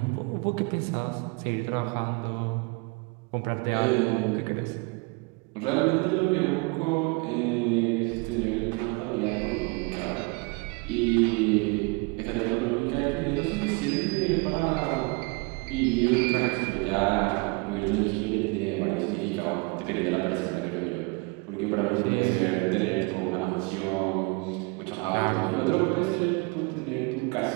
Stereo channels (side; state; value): left; quieter; 29.2 dB